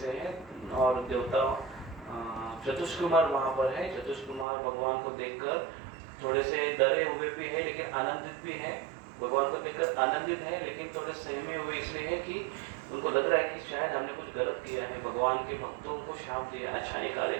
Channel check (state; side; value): drops out; left; at 4.5 s